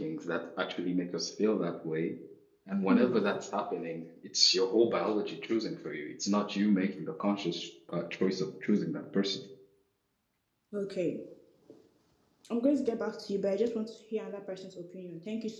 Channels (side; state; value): both; identical; correlation 1.00